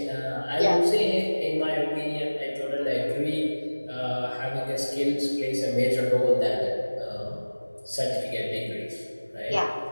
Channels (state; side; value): inverted; both; correlation -1.00